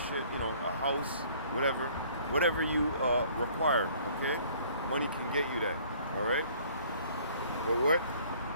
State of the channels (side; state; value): both; inverted; correlation -0.56